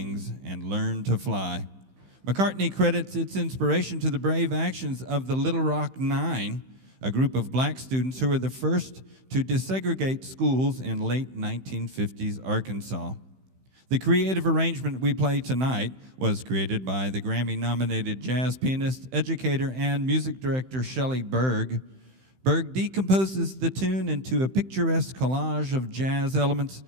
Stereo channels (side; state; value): left; late; 15 ms